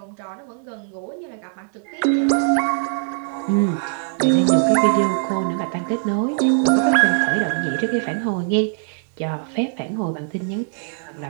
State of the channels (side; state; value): left; silent; digital silence